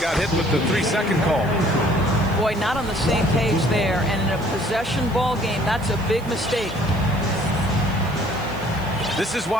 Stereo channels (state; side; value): noise; right; hiss, 23 dB below the sound